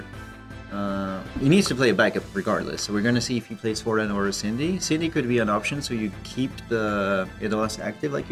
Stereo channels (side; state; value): both; identical; correlation 1.00